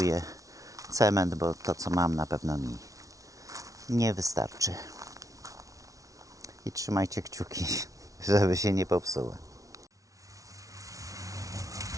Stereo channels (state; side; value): late; left; 0.17 ms